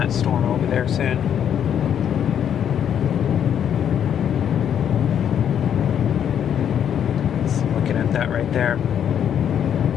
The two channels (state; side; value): quieter; right; 9.0 dB